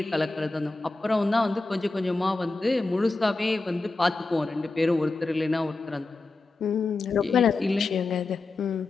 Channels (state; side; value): quieter; right; 3.4 dB